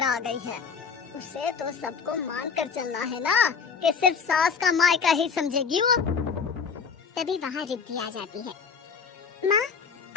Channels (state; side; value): quieter; right; 5.8 dB